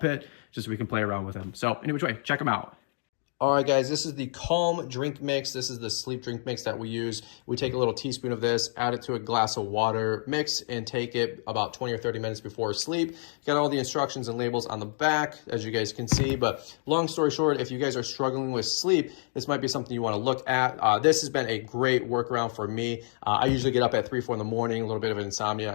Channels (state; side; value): silent; right; digital silence